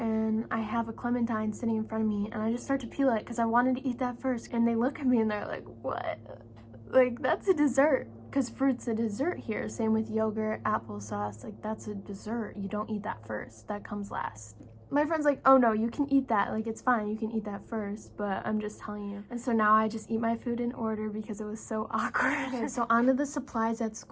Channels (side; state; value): both; identical; correlation 1.00